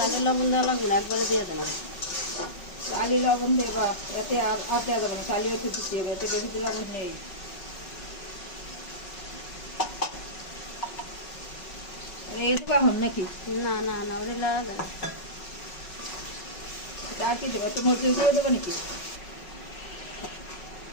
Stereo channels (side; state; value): right; late; 5.4 ms